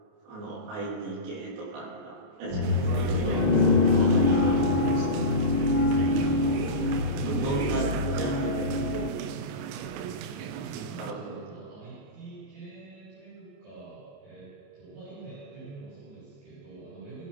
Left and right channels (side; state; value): left; late; 28 ms